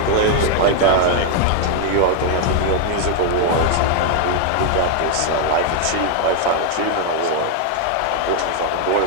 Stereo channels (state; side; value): different; both; correlation 0.00